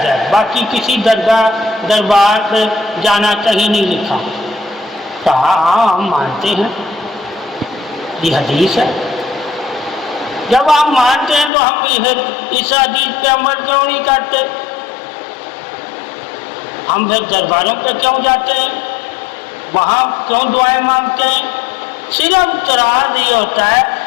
ہے، باقی کسی دربار پہ جانا کہیں نہیں لکھا، کہا ہاں ہم مانتے ہیں، یہ حدیث ہے۔ جب ہم مانتے ہیں تو ہم اس حدیث پہ عمل کیوں نہیں کرتے؟ ہم پھر درباروں پہ کیوں جاتے ہیں؟ وہاں کیوں دعائیں مانگتے ہیں؟ صرف اعتراض یہ ہوتا ہے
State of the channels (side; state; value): right; drops out; at 11.5 s